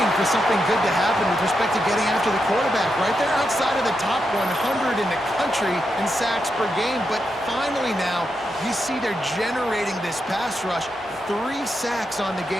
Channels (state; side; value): normal; both; correlation 0.85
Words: for something good to happen with respect to getting after the quarterback, right? They're outside of the top 100 in the country in sacks per game, but finally now you see they're generating this pass rush. 3 sacks on the